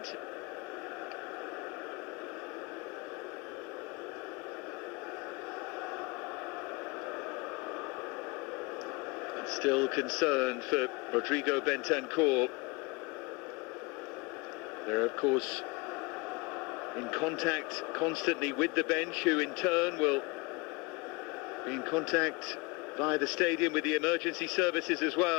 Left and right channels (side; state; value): right; quieter; 26.6 dB